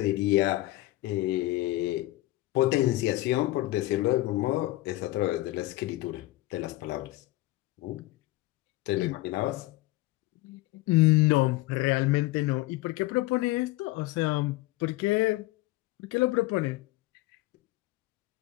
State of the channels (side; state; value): right; quieter; 18.2 dB